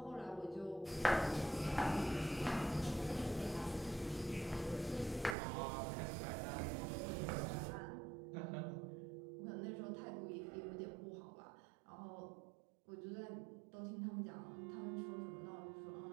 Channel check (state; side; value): drops out; left; at 5.4 s